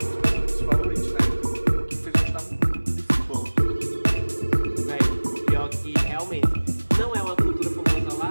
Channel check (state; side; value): inverted; both; correlation -1.00